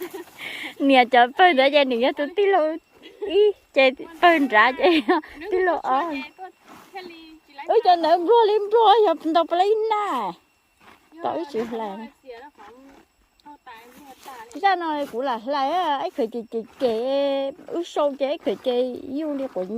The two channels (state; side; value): identical; both; correlation 1.00